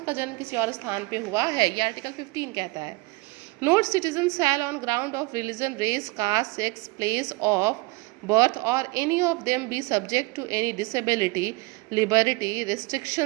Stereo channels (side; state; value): left; quieter; 24.8 dB